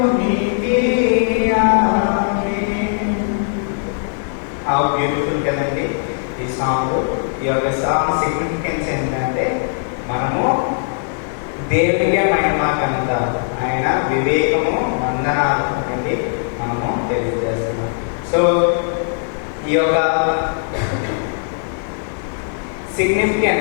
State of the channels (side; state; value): right; silent; digital silence